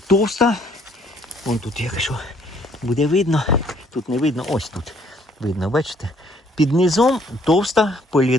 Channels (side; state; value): both; normal; correlation 0.63